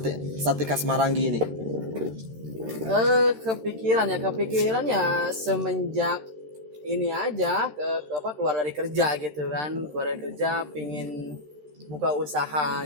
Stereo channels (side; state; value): left; late; 13 ms